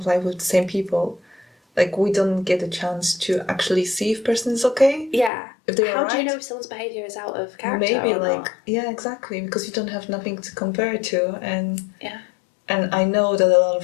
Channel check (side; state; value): right; drops out; at 5.3 s